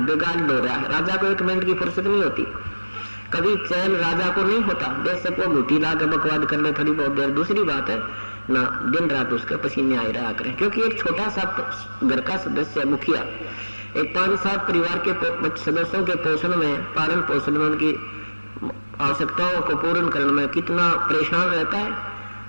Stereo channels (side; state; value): both; inverted; correlation -1.00